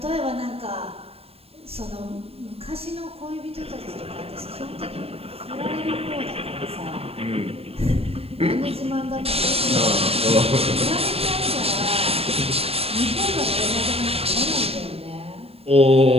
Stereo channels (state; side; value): late; left; 0.29 ms